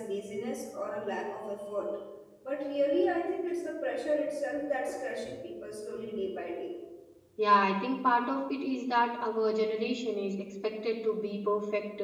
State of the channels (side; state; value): both; identical; correlation 1.00